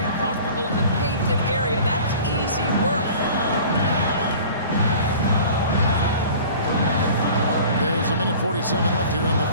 comfortable in the painted area. That's easy work. There's 1:47 left here in the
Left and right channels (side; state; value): both; inverted; correlation -0.44